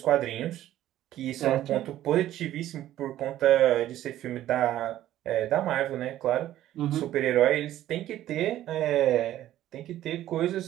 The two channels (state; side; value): quieter; left; 13.2 dB